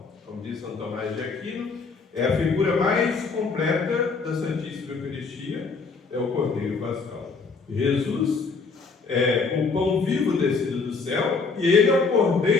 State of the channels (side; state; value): right; quieter; 4.6 dB